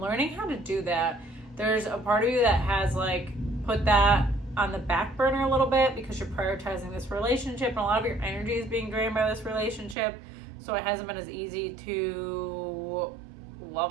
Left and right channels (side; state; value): left; drops out; at 10.0 s